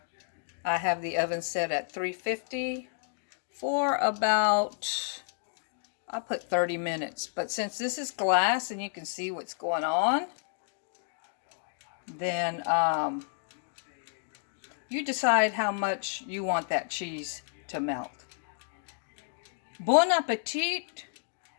I have the oven set at 350 for about, I'll put 30 minutes. But since this is glass and you can see what's going on, then you decide how much you want that cheese to melt. Bon appetit,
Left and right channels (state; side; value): silent; right; digital silence